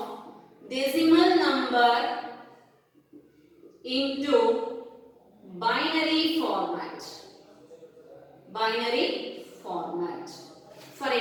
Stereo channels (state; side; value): identical; both; correlation 1.00